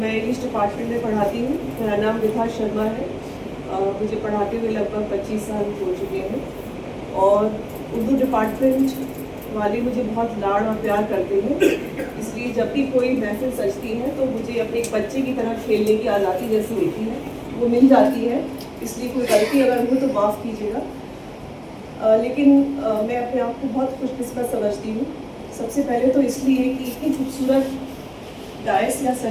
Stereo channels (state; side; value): identical; both; correlation 1.00